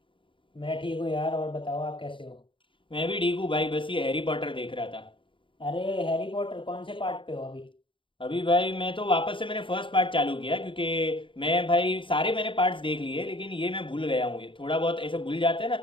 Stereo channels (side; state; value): right; late; 0.25 ms